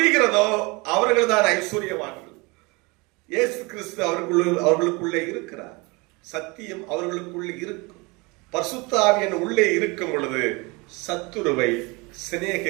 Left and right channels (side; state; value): left; quieter; 26.6 dB